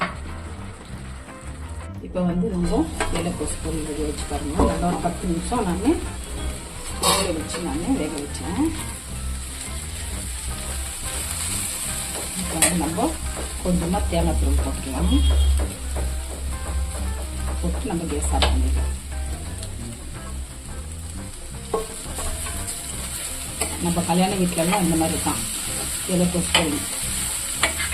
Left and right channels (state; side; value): identical; both; correlation 1.00